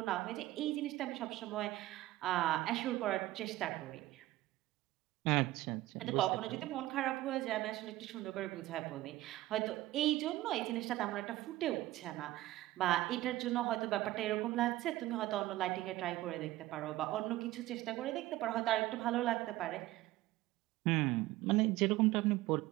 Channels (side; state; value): left; quieter; 16.7 dB